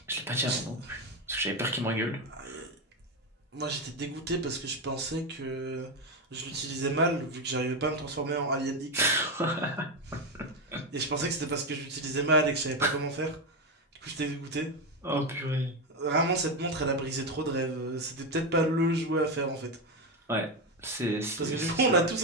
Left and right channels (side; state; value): both; normal; correlation 0.11